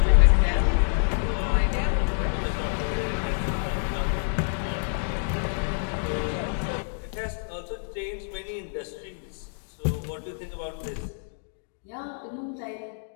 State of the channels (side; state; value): right; silent; digital silence